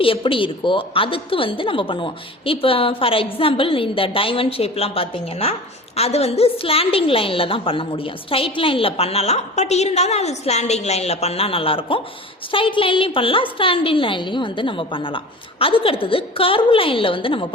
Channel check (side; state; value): both; normal; correlation 0.37